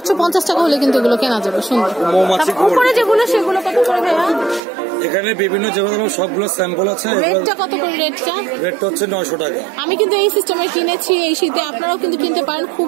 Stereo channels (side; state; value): left; drops out; at 4.6 s